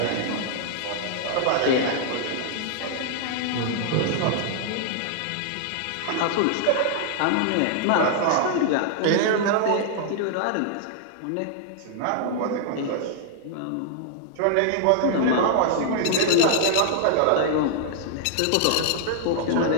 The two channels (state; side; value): different; both; correlation -0.01